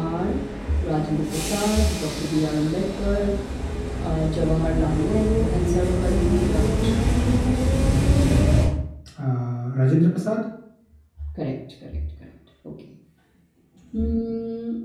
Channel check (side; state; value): both; identical; correlation 1.00